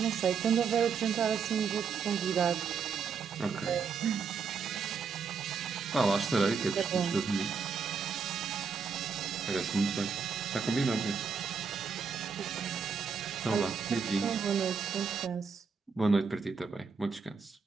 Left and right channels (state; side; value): quieter; left; 5.7 dB